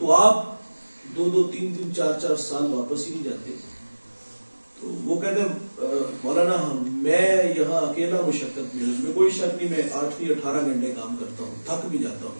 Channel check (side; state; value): both; inverted; correlation -1.00